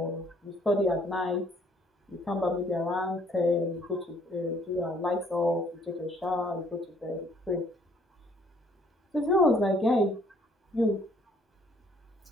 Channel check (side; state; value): both; normal; correlation 0.62